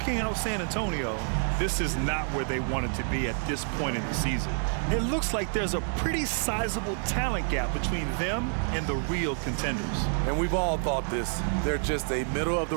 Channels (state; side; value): silent; left; 56 dB below the other